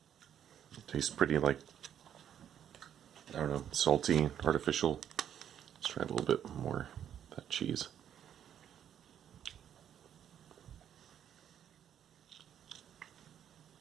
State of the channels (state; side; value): quieter; left; 9.6 dB